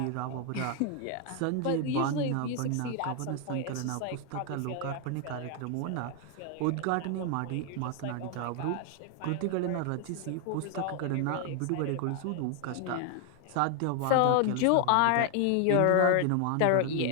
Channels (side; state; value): both; different; correlation 0.00